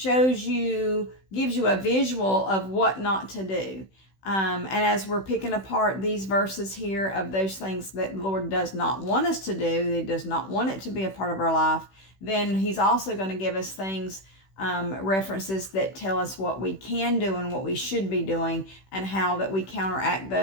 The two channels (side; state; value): right; late; 16 ms